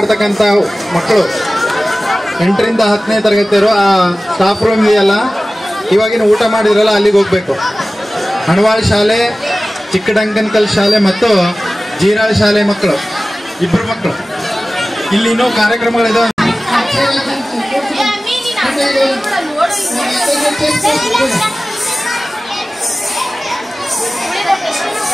ಮಕ್ಕಳು 8ರಿಂದ 10ನೇ ತರಗತಿಯವರು ಆ ಸ್ಟಾಫ್ ರೂಮ್ ಇದೆಯಲ್ಲ, ಇವಾಗಿನ ಊಟ ಮಾಡಿದ್ರಲ್ಲ ಅಲ್ಲಿಗೆ ಹೋಗ್ಬೇಕು. ಹಣವಾಳ್ ಶಾಲೆ, ಚಿಕ್ಕಡಂಕನಕಲ್ ಶಾಲೆ ಮತ್ತು ಜೀರಾಳ್ ಶಾಲೆ ಮಕ್ಕಳು, ಇಬ್ಬರು ಮಕ್ಕಳು. ಇಲ್ಲಿ ಇನ್ನೂ ಕಾರ್ಯಕ್ರಮಗಳಿದಾವೆ.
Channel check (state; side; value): normal; both; correlation 0.97